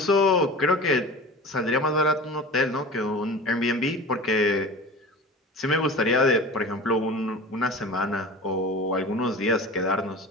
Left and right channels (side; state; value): both; normal; correlation 0.36